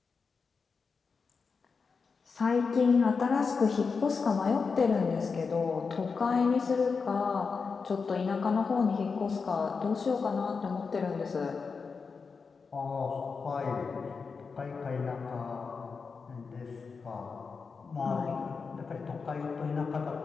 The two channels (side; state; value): right; quieter; 5.0 dB